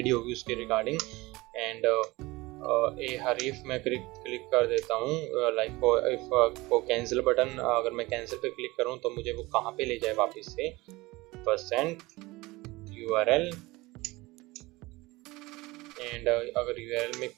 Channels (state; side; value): quieter; left; 21.5 dB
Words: होगी उसके रिगार्डिंग। एंड ए हरीफ मैं क्लिक कर देता हूँ, लाइक इफ वो कैंसिल बटन, अगर मैं कैंसिल पे क्लिक करूँ तो मुझे वो कहाँ पे ले जाए वापस से, %URL एंड अगर URL में